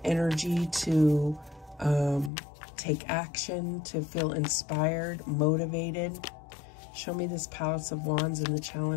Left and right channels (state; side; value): drops out; right; at 2.3 s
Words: energy to take action, to feel inspired, motivated. Show me this Palace of Wands in the